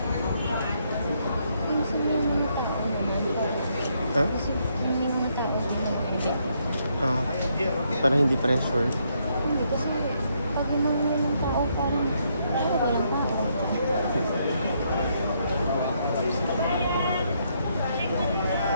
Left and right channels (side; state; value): both; inverted; correlation -0.75